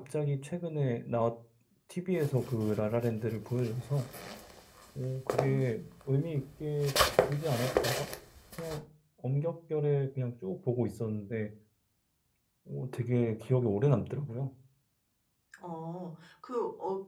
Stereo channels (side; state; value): both; identical; correlation 1.00